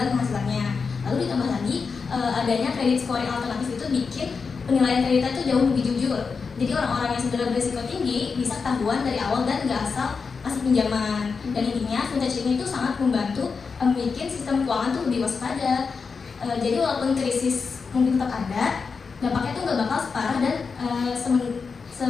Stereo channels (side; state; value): right; quieter; 5.1 dB